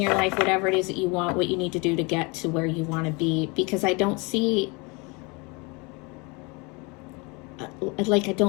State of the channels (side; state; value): right; quieter; 28.9 dB